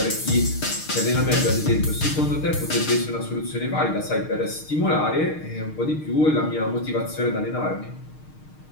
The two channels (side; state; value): right; late; 6.5 ms